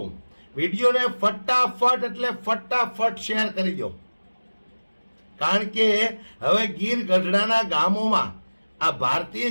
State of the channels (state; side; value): inverted; both; correlation -1.00